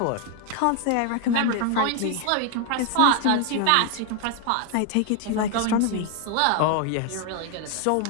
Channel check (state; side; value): different; both; correlation 0.01